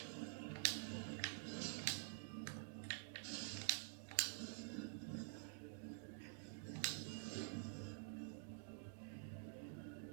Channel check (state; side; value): silent; left; digital silence